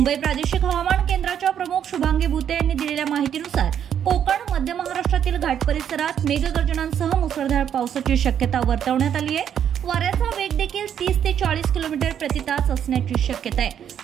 प्रादेशिक हवामान केंद्राच्या प्रमुख शुभांगी भुते यांनी दिलेल्या माहितीनुसार कोकण, मध्य महाराष्ट्रातील घाट परिसरात मेघगर्जनांसह मुसळधार पावसाची शक्यता वर्तवण्यात आली आहे। वाऱ्याचा वेग देखील 30 ते 40 किलोमीटर प्रति तास असण्याची शक्यता आहे।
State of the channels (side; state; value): left; quieter; 9.1 dB